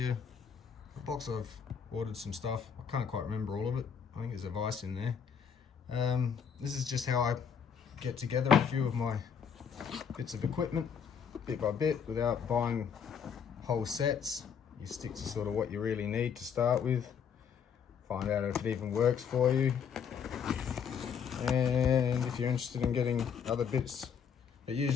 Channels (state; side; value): quieter; right; 7.2 dB